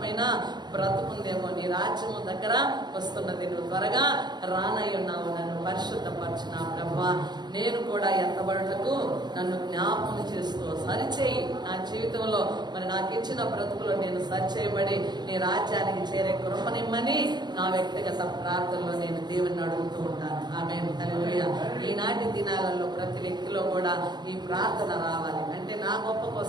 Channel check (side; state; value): left; late; 0.21 ms